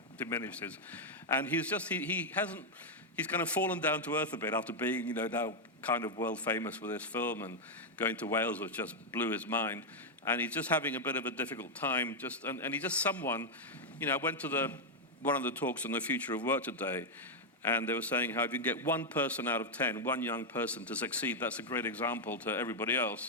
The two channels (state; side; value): normal; both; correlation -0.01